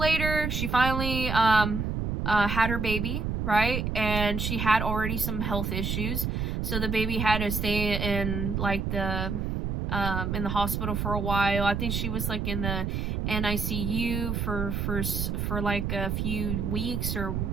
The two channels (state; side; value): noise; right; rumble, 1 dB below the sound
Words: she finally had her baby, right? And she had already some health issues, so the baby had to stay in, like, in the hospital for a while. I think she was, like, in the NICU for like a few weeks